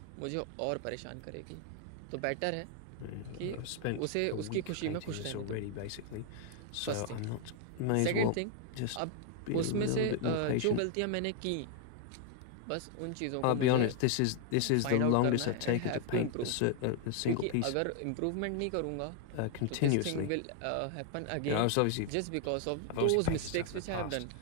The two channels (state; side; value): different; both; correlation 0.00